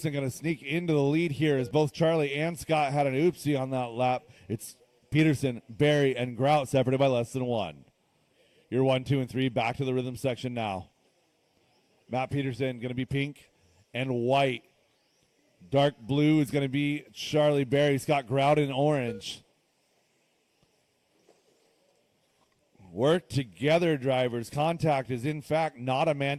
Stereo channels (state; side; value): identical; both; correlation 1.00